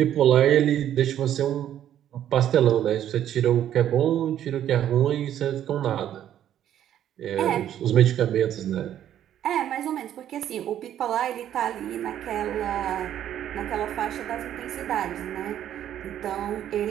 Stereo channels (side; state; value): left; quieter; 10.9 dB